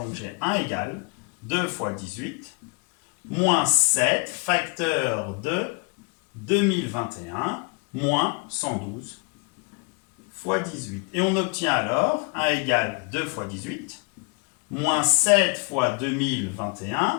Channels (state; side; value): quieter; right; 33.1 dB